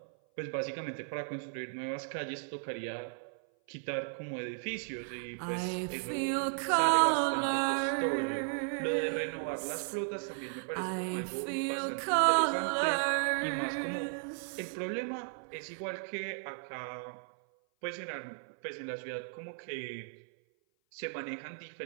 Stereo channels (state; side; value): silent; left; 54 dB below the other